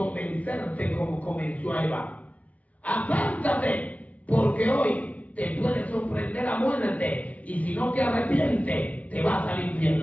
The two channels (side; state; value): right; late; 0.069 ms